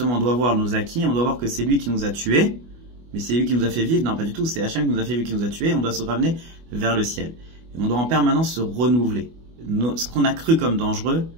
on doit voir nos acquis, on doit voir que c'est lui qui nous a tués, mais c'est lui qui nous a fait vivre. Non, pas du tout, c'est Hachem qui nous a fait vivre, qui nous a tués, on doit se ramener vers le ciel. Et on doit en permanence se renouveler. Ce qu'on a cru comme dangereux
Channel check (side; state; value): left; late; 25 ms